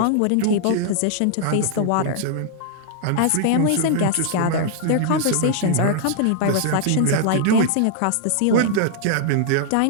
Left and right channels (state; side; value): different; both; correlation -0.01